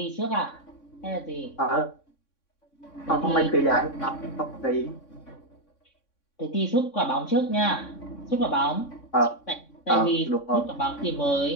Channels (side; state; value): right; late; 3.6 ms